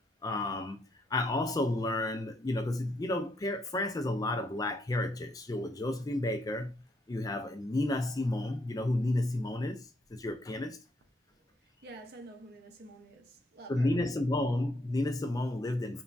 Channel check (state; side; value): normal; both; correlation 0.74